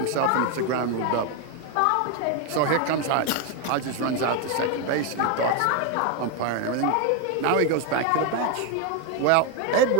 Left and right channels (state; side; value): different; both; correlation 0.01